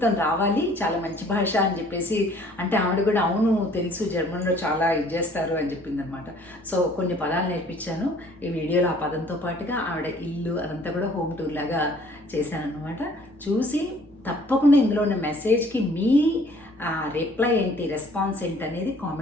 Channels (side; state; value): both; normal; correlation 0.56